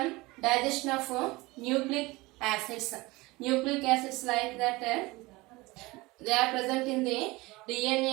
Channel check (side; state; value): left; quieter; 22.1 dB